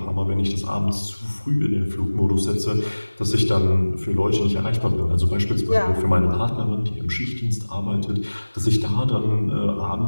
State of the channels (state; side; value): inverted; both; correlation -1.00